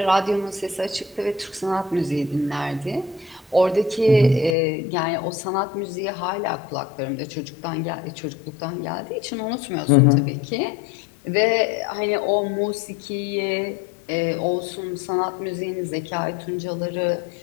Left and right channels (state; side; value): drops out; right; at 4.5 s